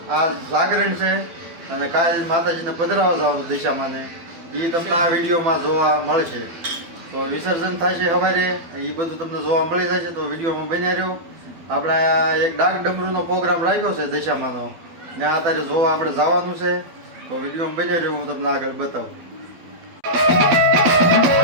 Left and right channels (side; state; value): left; late; 12 ms